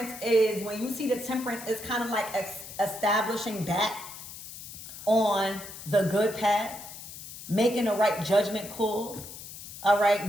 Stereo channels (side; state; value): left; noise; hiss, 13 dB below the sound